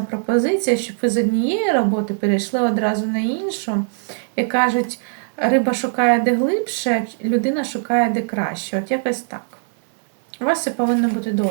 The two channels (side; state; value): left; silent; 66 dB below the other